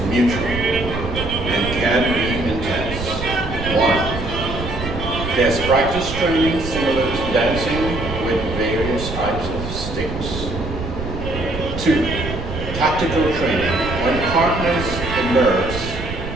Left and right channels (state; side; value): noise; right; rumble, 7 dB below the sound